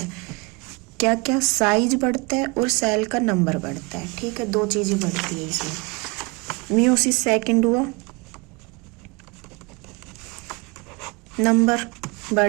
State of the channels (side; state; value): left; quieter; 27.9 dB